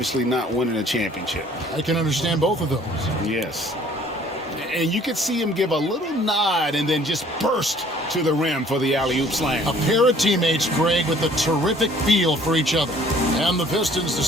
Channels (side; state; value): both; normal; correlation 0.56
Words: not winning a championship. I can understand both of those. Yes. And you could see him give a little nod and then just burst to the rim for the alley-oop slam. A pair of teammates, Greg, with a terrific feel for each other. And the Pistons